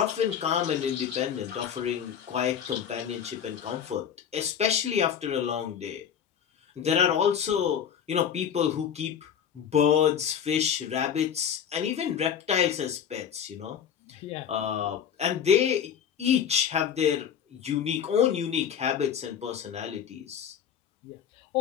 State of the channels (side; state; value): right; quieter; 8.3 dB